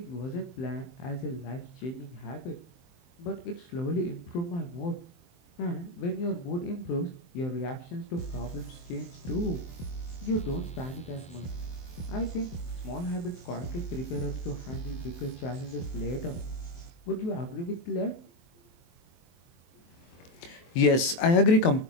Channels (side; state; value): right; late; 23 ms